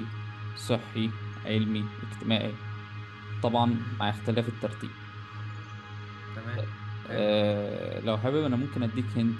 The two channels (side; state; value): both; identical; correlation 1.00